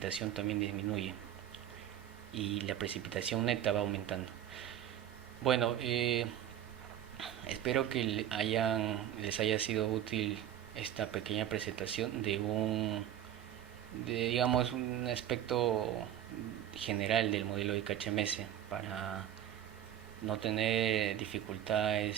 también disminuye y la precipitación neta va aumentando. Bueno, espero que les haya sido útil esta pequeña presentación digamos, un aspecto general del modelo de KHMS para no tener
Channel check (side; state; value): left; quieter; 11.1 dB